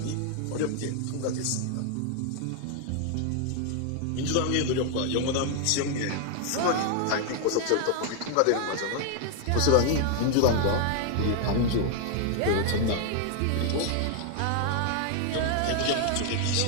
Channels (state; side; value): different; both; correlation 0.00